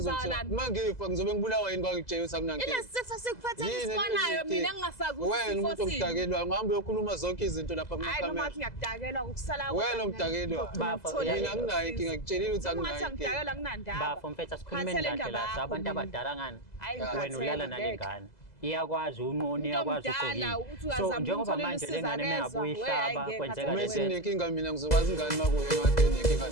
mangifa ngizobe ngibulawa yini kwangitshela ukuthi akunankinga ile sifo sikuphethe isibonayo mina ngingasazi ukuthi wena umuntu omdakelwa ngihamba uyokhuluma zonke izinto lapha hayi kumakamera noma ngiyakudakelwa ukusala wena umdakelwa mina anginayo inkinga ngikutshelile ukuthi anginayo inkinga ngidakelwa kunandaba bafo mfethu asikhulume kahle la abantu abadala ngani wena ulala nalengane iyakwazi unqoni iyakwazi so njengoba manje lengane mengabuyihlaba kwenzeka uma sinenkinga mina ngizokwazi ingane makuye kade nenkinga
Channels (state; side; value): late; right; 2.0 ms